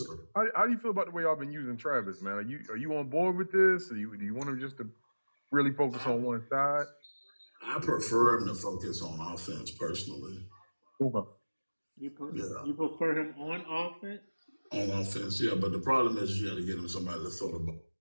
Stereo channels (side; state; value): both; inverted; correlation -1.00